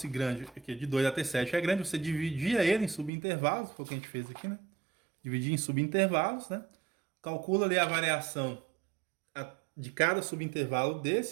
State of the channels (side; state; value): left; drops out; at 3.1 s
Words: grande, aqui de 2 até 7 é grande, você dividia ele em subintervalos, foi o que a gente fez aqui, né? Dividir em subintervalos, né? Calcula ali a variação de cada subintervalo